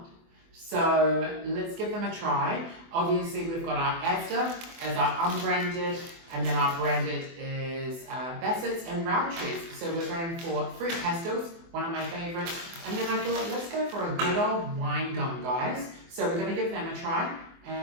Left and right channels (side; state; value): left; late; 24 ms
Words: So let's give them a try. Obviously, we've got our Asda as our unbranded, and then our branded is Bassett's and Roundtrees. So we're going for fruit pastels, one of my favorites. And then I thought, let's go for a good old wine gum, guys. So we're going to give them a try.